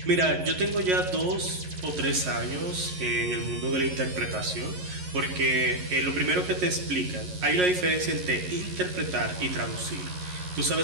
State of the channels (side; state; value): left; late; 11 ms